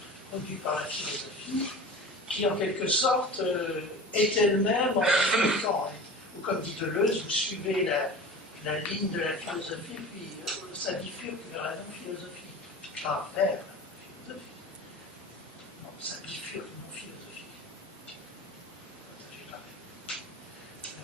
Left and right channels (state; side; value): normal; both; correlation 0.36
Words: produit par la philosophie, qui en quelque sorte est elle-même en bifurquant. Ou comme dit Deleuze, vous suivez la ligne de la philosophie, puis ça bifurque vers la non-philosophie, pas vers la philosophie. Non, ça bifurque non-philosophie.